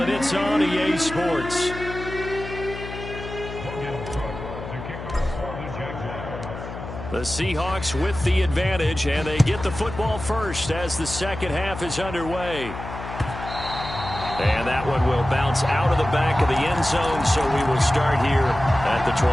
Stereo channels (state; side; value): noise; left; hum, 10 dB below the sound